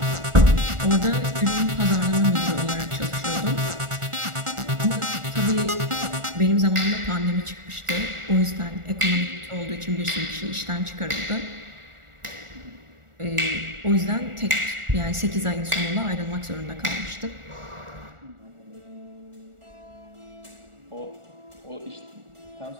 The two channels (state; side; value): late; left; 1.4 ms